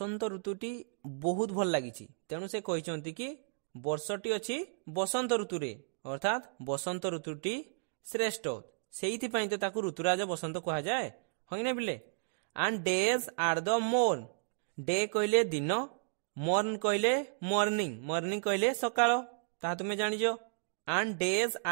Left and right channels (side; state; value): left; silent; digital silence